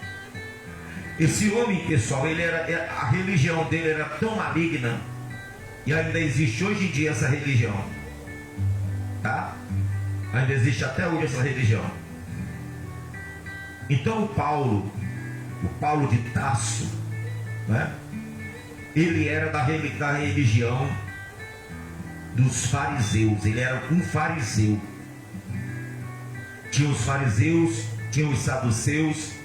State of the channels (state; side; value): identical; both; correlation 1.00